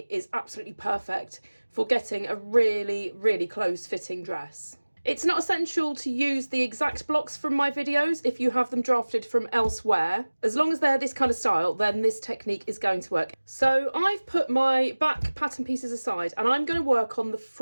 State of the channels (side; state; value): both; inverted; correlation -1.00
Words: is absolutely perfect for getting a really, really close fitting dress. It's not essential to use the exact blocks from my videos if you have them drafted from elsewhere. As long as they're this kind of style, then this technique is going to work. So I've put my back pattern pieces aside and I'm going to work on the